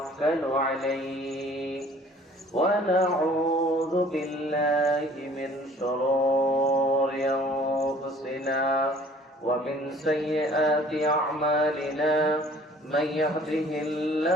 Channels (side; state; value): both; normal; correlation 0.53